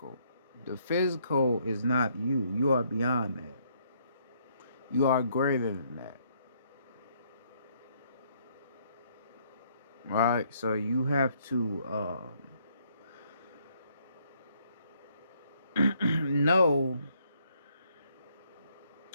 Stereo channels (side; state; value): both; inverted; correlation -0.69